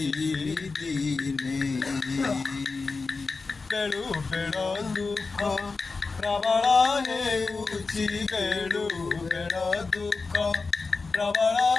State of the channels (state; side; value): quieter; right; 4.2 dB